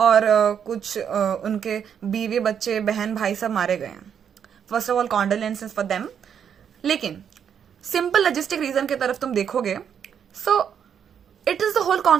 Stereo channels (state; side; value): quieter; left; 8.1 dB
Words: कुछ उनके बीवी बच्चे बहन भाई सब मारे गए हैं. First of all condolences for them. लेकिन सिंपल लॉजिस्टिक रीजन की तरफ तुम देखोगे, so it is the whole